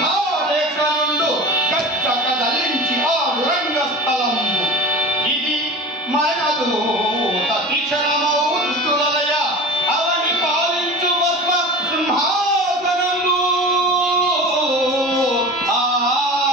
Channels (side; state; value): both; normal; correlation 0.34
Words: గచ్చక దలించి ఆడు రంగస్థలంబు ఇది మనదు తీక్షణమౌ దుష్టులయ అవని పాలించు పద్మ సింహాసనము.